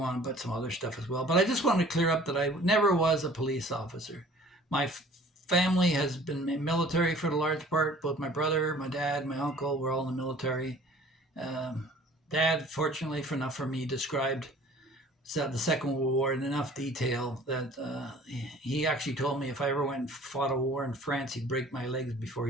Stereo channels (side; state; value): both; normal; correlation 0.50